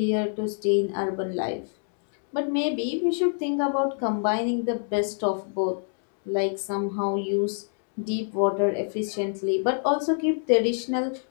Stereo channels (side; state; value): right; silent; digital silence